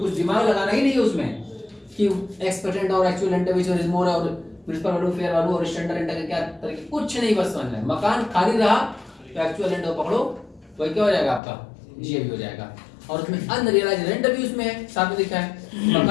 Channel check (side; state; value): right; drops out; at 11.4 s